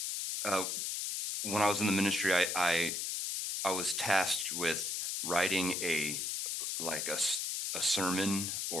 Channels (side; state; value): left; noise; hiss, 1 dB below the sound